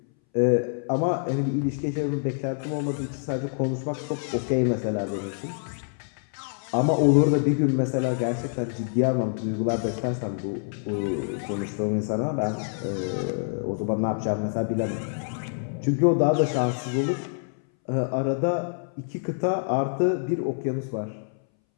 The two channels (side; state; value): right; silent; 61 dB below the other